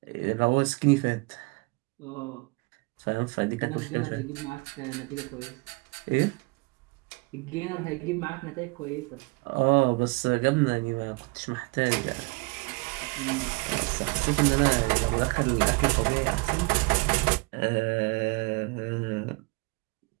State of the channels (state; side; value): quieter; left; 28.2 dB